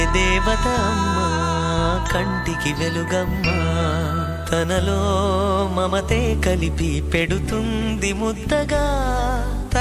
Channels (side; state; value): both; identical; correlation 1.00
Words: దేవత అమ్మా, కంటికి వెలుగమ్మా. తనలో మమతే కలిపి పెడుతుంది ముద్దగా,